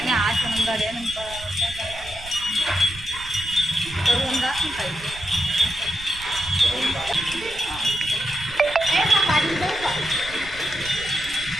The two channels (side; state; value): right; noise; rumble, 16 dB below the sound